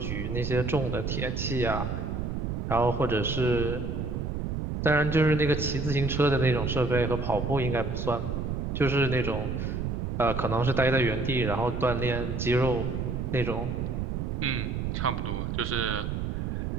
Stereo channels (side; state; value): right; noise; rumble, 2 dB below the sound